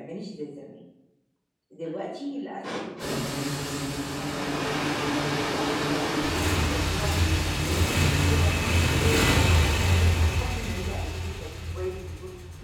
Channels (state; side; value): identical; both; correlation 1.00